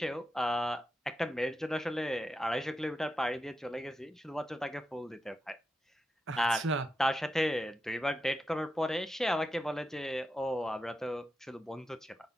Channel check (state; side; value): normal; both; correlation 0.88